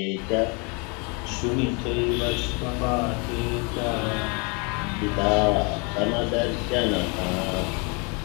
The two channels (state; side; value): quieter; right; 32.4 dB